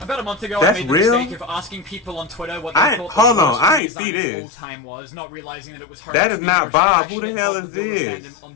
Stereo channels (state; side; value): drops out; right; at 3.8 s